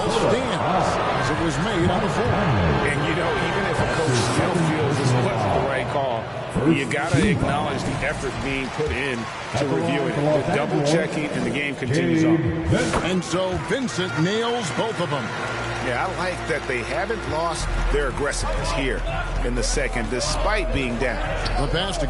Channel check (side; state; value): both; identical; correlation 1.00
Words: stands as it was made on the floor. And, you know, even if a coach still feels this wasn't the right call, you got to acknowledge the effort being put in to review it. The double checking, and the game continues on. And so Vincent nails both of them. Yeah, I like that they haven't lost their aggressiveness here in the second, despite being down. The pass to